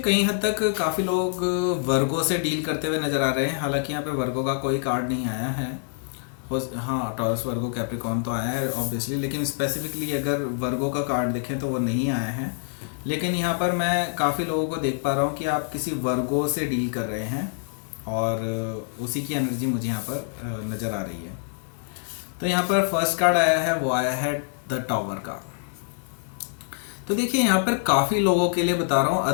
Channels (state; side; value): silent; right; digital silence